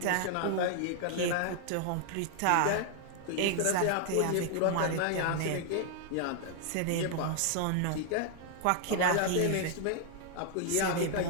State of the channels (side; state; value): both; different; correlation 0.00